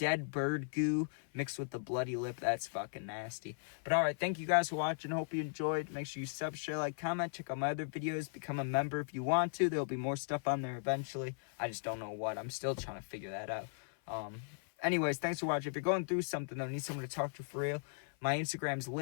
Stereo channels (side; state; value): right; silent; 53 dB below the other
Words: bird goo mixed with the bloody lip, that's fucking nasty. But alright, thank you guys for watching. Hope you enjoyed. Make sure you sub, share, like, comment. Check out my other videos. Become a member if you want to. There'll be more stuff on there eventually. I just don't know what. I'm still trying to figure that out. Anyways, thanks for watching. If you're going through something, though, need someone to talk to for real, my Instagram's